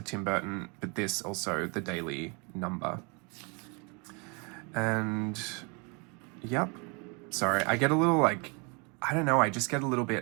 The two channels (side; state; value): left; quieter; 32.4 dB